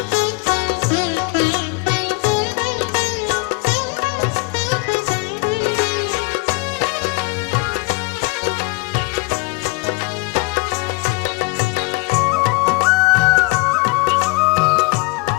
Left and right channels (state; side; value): quieter; right; 27.7 dB